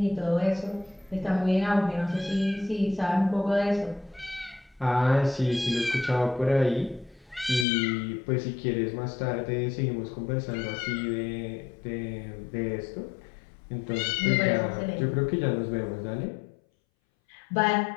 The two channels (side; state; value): right; drops out; at 7.7 s